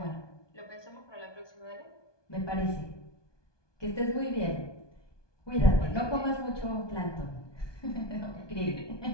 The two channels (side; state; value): right; late; 1.2 ms